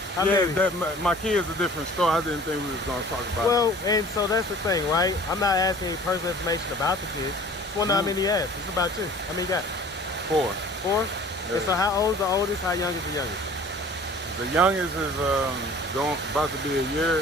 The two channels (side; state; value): both; normal; correlation 0.47